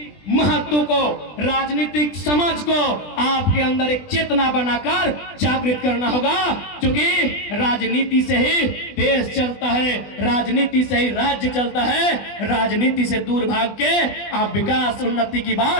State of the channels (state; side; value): late; right; 20 ms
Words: महत्व को, राजनीतिक समझ को आपके अंदर एक चेतना बनाकर जागृत करना होगा। क्योंकि राजनीति से ही देश चलता है, राजनीति से ही राज्य चलता है। राजनीति से दूर भाग के आप विकास उन्नति की